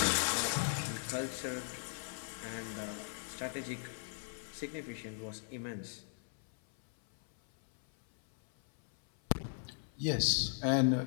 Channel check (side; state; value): right; silent; 53 dB below the other